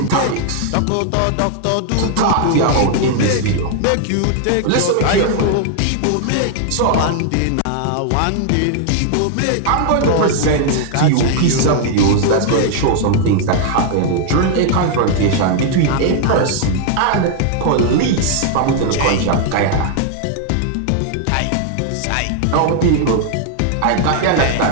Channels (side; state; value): both; different; correlation 0.00